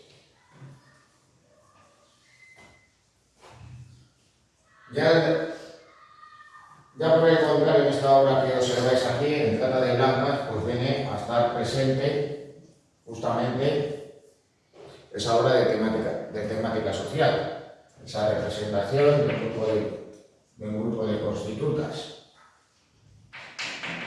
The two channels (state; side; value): identical; both; correlation 1.00